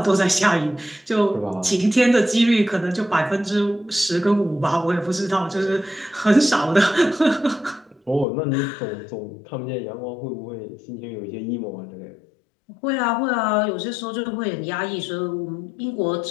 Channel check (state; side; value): drops out; right; at 8.2 s